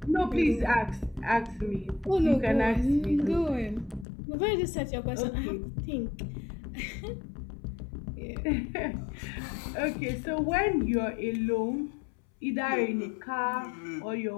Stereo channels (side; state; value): right; drops out; at 4.0 s